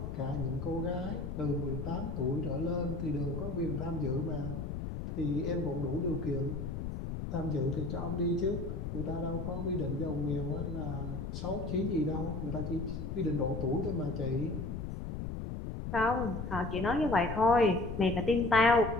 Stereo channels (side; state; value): left; noise; rumble, 5 dB below the sound